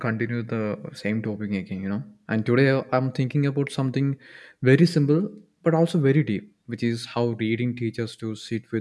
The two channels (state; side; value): identical; both; correlation 1.00